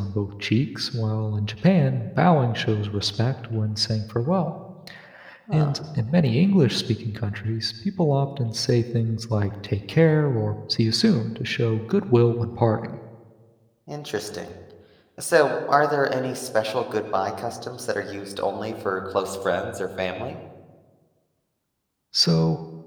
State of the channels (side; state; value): both; identical; correlation 1.00